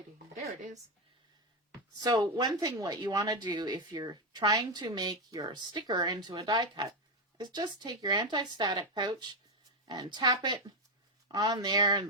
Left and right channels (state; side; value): normal; both; correlation 0.07